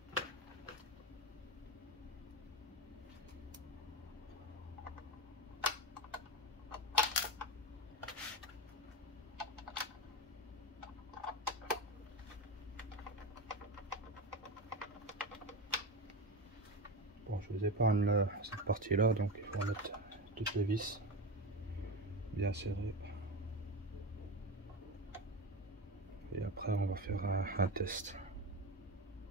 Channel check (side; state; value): both; normal; correlation 0.21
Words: Bon, je vous épargne cette partie là, donc il faut mettre toutes les vis bien serrées. Et après on va faire un test.